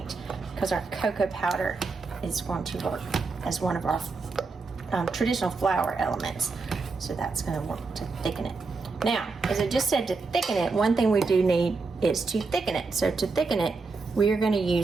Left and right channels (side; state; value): left; quieter; 4.2 dB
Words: because our cocoa powder is going to work as one of our traditional flour elements. So that's going to work to thicken it. Now, as I just said, to thicken it, one thing we do need is to thicken it. So to thicken it, we are going to